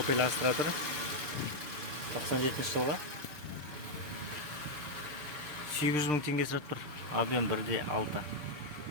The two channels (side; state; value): left; late; 6.7 ms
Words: Astra тұр. 97 жылға. 800 мың теңге сұрап тұр. Объем 1,6.